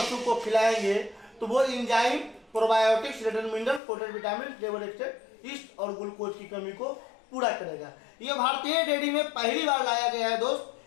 को खिलाएंगे तो वो enzyme, probiotics, return mineral, protein, vitamin, level एक्सट्रेट, east और ग्लूकोज की कमी को पूरा करेगा। ये भारतीय डेयरी में पहली बार लाया गया है दोस्त,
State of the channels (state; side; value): drops out; right; at 3.8 s